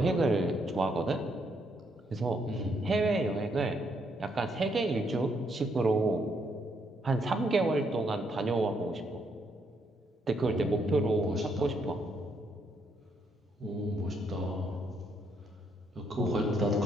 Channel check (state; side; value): normal; both; correlation 0.74